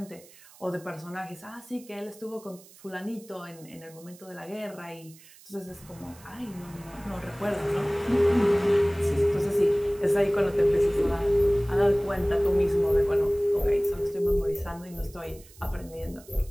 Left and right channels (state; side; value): noise; right; hiss, 23 dB below the sound